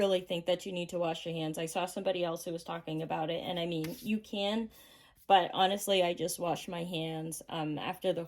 think that you need to wash your hands. I saw somebody else who was talking about it, and I mean, you can, but honestly, I just wash my hands after the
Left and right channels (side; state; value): both; identical; correlation 1.00